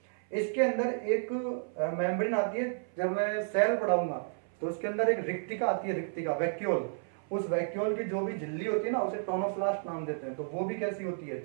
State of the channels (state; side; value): silent; left; 57 dB below the other